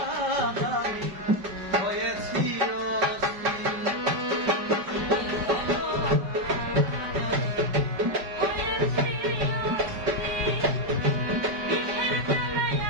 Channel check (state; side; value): late; left; 5.2 ms